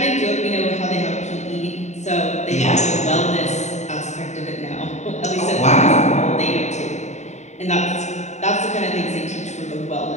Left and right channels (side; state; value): right; late; 0.34 ms